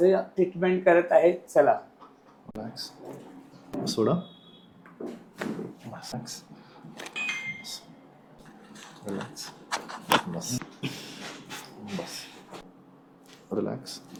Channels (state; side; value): identical; both; correlation 1.00